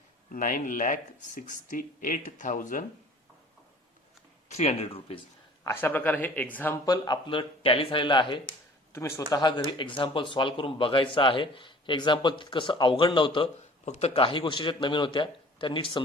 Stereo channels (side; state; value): both; normal; correlation 0.48